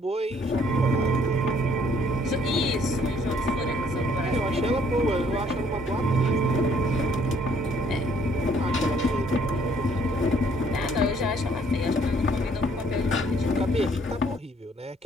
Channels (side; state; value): both; normal; correlation 0.63